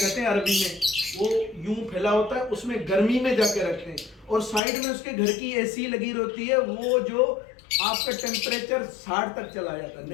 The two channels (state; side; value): drops out; right; at 4.6 s